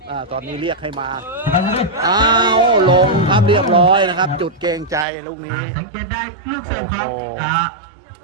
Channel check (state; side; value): drops out; left; at 5.1 s